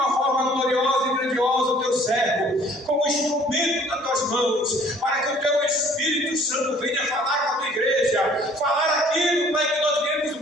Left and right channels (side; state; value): both; normal; correlation 0.56